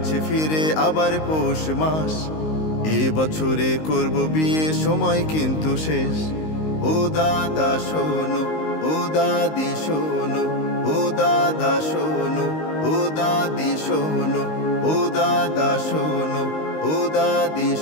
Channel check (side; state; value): right; late; 19 ms